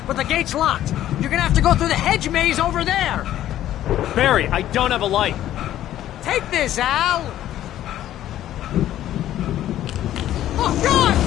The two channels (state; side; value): quieter; right; 12.6 dB